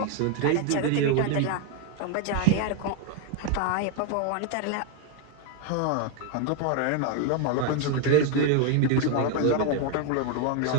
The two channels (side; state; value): both; different; correlation 0.01